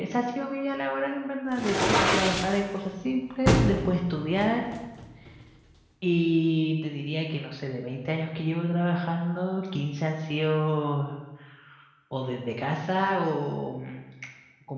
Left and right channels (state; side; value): identical; both; correlation 1.00